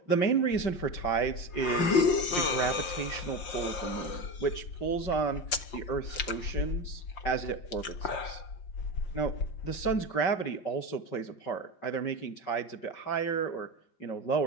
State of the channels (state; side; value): late; right; 5.6 ms